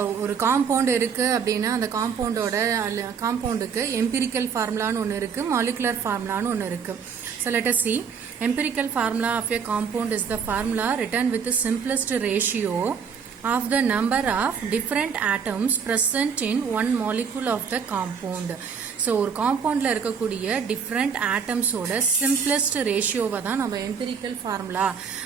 ஒரு compound இருக்குது அப்படின்னா அந்த காம்பவுண்டுக்கு எம்பிரிக்கல் ஃபார்முலான்னு ஒன்று இருக்குது, மாலிகுலர் ஃபார்முலான்னு ஒன்று இருக்குது. So let us see. Empirical formula of a compound is the formula written with the simplest ratio of the number of different atoms present in one molecule of the compound. So ஒரு காம்பவுண்டில் இருக்கக்கூடிய different ஆட்டம்ஸோட simplest ரேஷியோவை தான் நம்ம empirical formula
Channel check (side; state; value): left; quieter; 6.5 dB